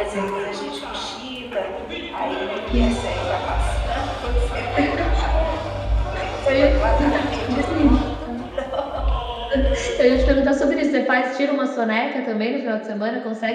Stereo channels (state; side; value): identical; both; correlation 1.00